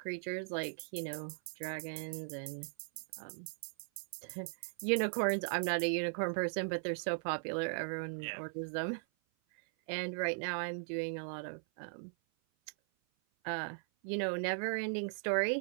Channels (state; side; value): silent; left; 52 dB below the other